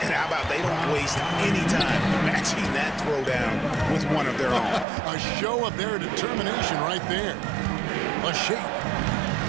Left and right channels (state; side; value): drops out; left; at 4.9 s